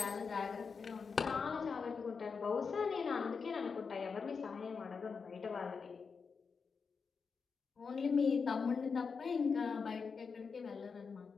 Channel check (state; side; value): quieter; right; 5.4 dB